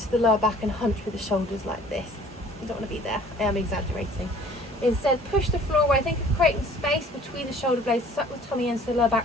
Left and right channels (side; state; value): both; normal; correlation 0.52